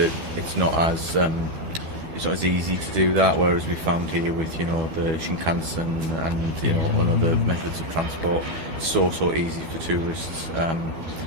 not as easy to do that, whereas we found here with the Shinkansen and other methods of transport, so easy for tourists.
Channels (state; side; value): late; left; 12 ms